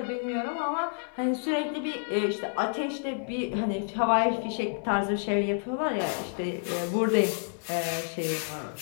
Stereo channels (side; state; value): right; silent; 58 dB below the other